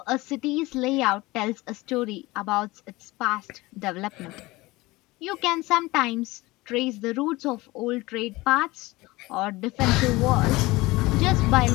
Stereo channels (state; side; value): quieter; right; 20.9 dB